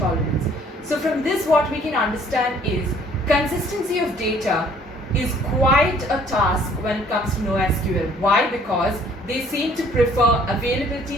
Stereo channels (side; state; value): both; normal; correlation 0.58